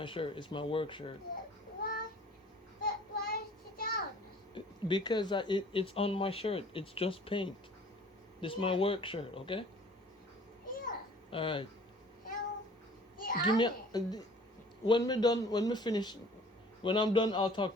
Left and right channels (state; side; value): normal; both; correlation 0.50